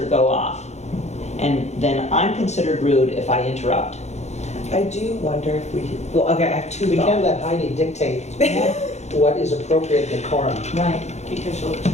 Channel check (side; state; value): right; late; 0.32 ms